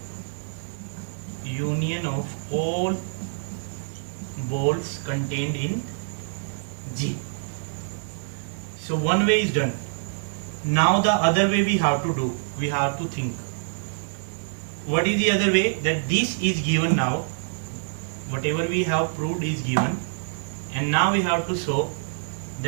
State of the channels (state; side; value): silent; left; digital silence